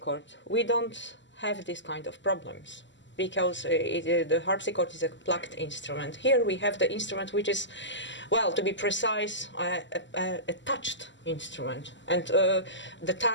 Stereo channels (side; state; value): right; late; 0.54 ms